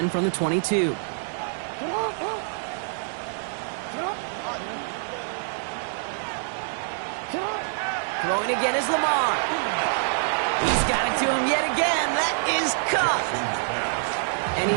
from the 22. Throwing again is Lamar. He's got it to him yet again. That is caught. And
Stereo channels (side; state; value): left; silent; 61 dB below the other